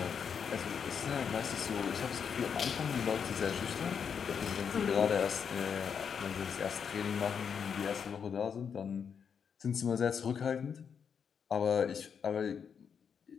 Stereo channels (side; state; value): right; quieter; 6.9 dB